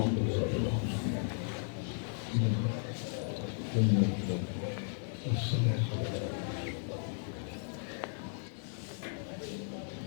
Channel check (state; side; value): silent; right; 54 dB below the other